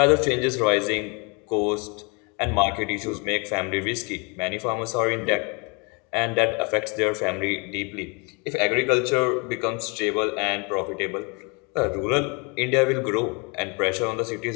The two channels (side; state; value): right; quieter; 31.6 dB